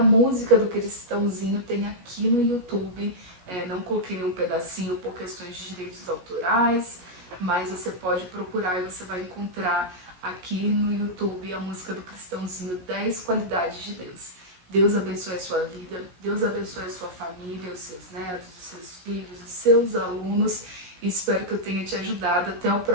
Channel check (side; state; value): left; late; 16 ms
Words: música do Cristãozinho tem aqui no YouTube. Não coloquei nenhum pedacinho por questões de direitos autorais, mas você pode procurar e você vai encontrar aqui no YouTube a música do Cristãozinho, 10 qualidades de Deus. Deus abençoe a sua vida, Deus abençoe a sua família, os seus netos, os seus filhos, os seus alunos. Espero que eu tenha te ajudado. Até o